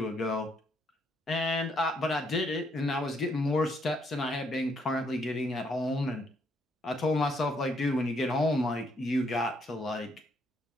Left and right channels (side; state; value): both; normal; correlation 0.72